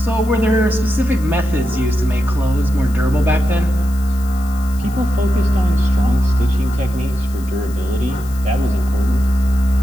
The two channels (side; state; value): left; noise; hiss, 20 dB below the sound